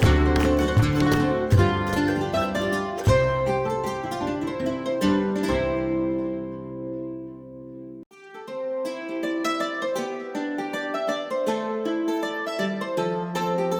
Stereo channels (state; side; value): identical; both; correlation 1.00